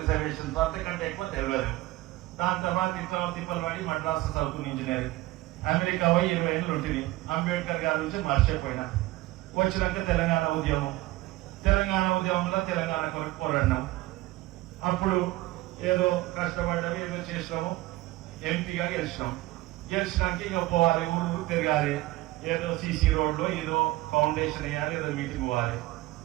అంతకంటే ఎక్కువ తెలియదు. దాని తర్వాత ఇట్లా తిప్పలు పడి మద్రాసు చదువుకుని ఇంజనీరింగ్, అమెరికా పోయి 20 ఏళ్ళు ఉంటుంది. అంబేద్కర్ గారి నుంచి మర్చిపోయినా. వచ్చినాక తెలంగాణ ఉద్యమంలో తెలంగాణ కొరకు పోరాడినాం. అప్పుడు ఏదో కష్టపడ్డాము, ఏదో చేసినాము, ఎంపీగా గెలిచినాక ఇక పోవాలి, ఊరు తిరగాలి. ఏదో సీసీ రోడ్ లో ఏదో ఫౌండేషన్ వేయాలి, ఏదో మీటింగ్ పోవాలి.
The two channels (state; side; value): quieter; left; 18.3 dB